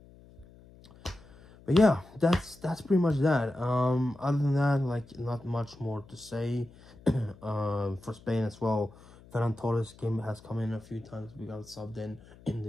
But yeah, that's pretty much that. Other than that, like, not much more to say. For Spain as well, Ferran Torres has come in a few times. We got subbed in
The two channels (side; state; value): left; noise; hum, 23 dB below the sound